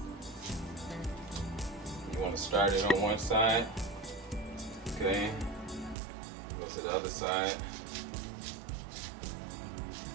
You want to start it on one side. Okay. Go to the other side.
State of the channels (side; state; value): left; drops out; at 6.0 s